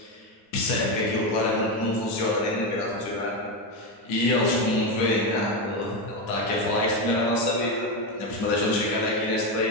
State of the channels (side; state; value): right; late; 10 ms